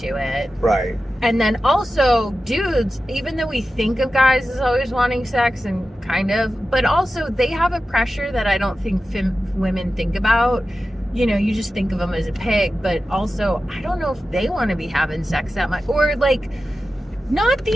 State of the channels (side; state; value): both; normal; correlation 0.93